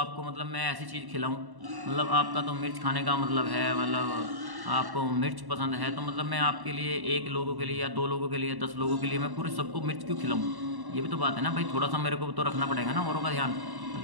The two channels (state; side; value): late; left; 1.1 ms